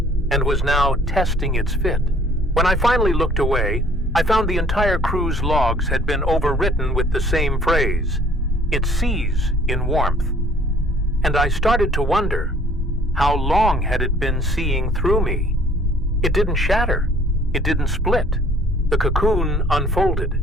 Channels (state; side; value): normal; both; correlation 0.57